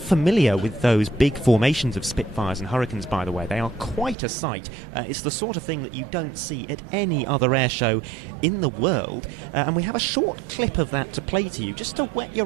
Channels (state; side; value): drops out; left; at 4.2 s